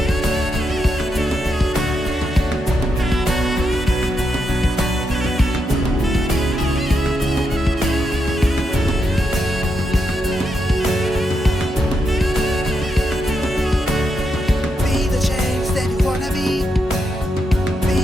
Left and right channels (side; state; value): both; normal; correlation 0.83